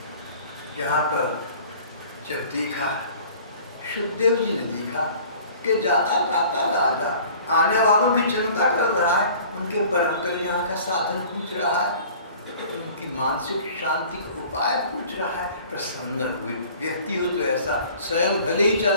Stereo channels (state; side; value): inverted; both; correlation -0.48